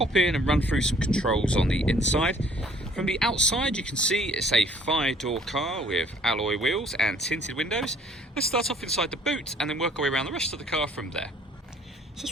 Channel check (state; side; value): normal; both; correlation 0.58